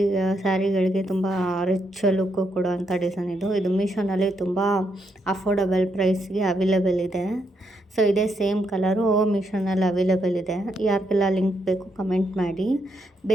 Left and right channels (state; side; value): normal; both; correlation 0.78